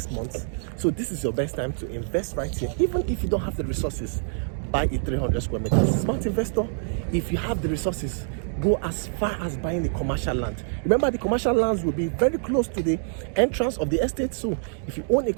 month, so this is your best time to invest right here. Even if you don't have the resources, buy a 300 square meters. Smart investor, if you have the resources, go as far as buying the commercial land. Remember, the commercial lands will be very close to the entrance of the estate, so if you own a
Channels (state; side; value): silent; left; digital silence